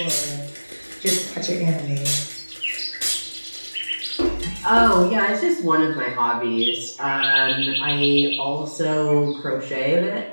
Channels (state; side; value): inverted; both; correlation -1.00